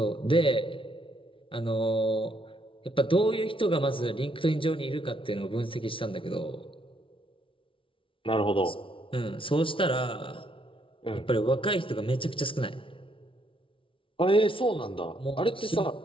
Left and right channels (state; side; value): late; right; 0.25 ms